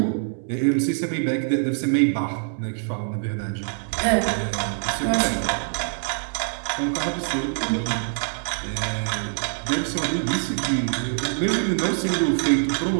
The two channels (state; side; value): silent; left; digital silence